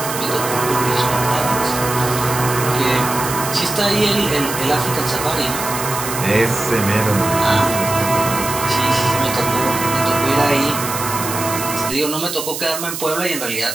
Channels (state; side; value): noise; right; hiss, 6 dB below the sound